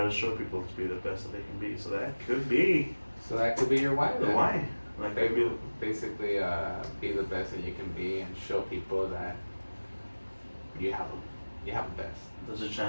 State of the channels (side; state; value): both; inverted; correlation -1.00